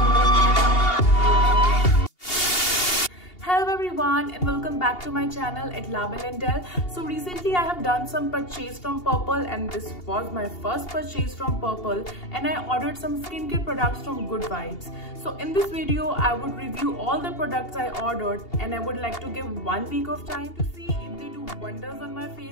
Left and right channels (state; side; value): late; right; 2.8 ms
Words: Hello everyone and welcome back to my channel at Label and Del. So recently I have done some purchase from Purple and this was my first purchase from Purple, and I ordered some skincare products from Good Vibes. So in this video I would review all the products I ordered, and I would like to give 1 week of time to see if they do wonders on my